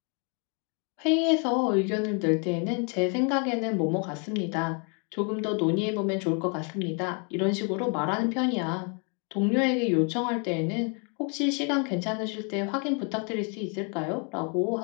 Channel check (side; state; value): right; quieter; 37.4 dB